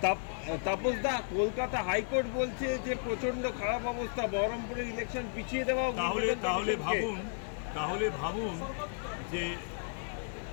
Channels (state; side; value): silent; right; digital silence